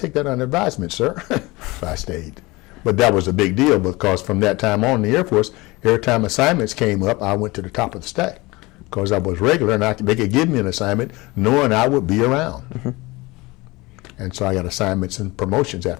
that under advisement, sir. So I stayed. But that was a big deal because from that time on in the Air Force, every time assignments came up, I went to the top of the stack because I was regular, and they could give me an assignment knowing I would be around. And so I got assignments and promotions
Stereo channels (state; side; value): quieter; right; 22.5 dB